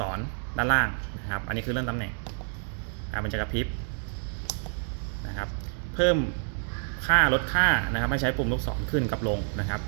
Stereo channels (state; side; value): silent; left; 59 dB below the other